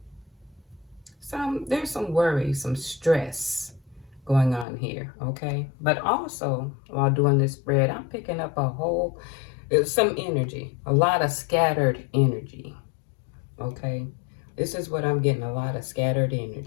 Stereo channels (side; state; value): right; drops out; at 4.7 s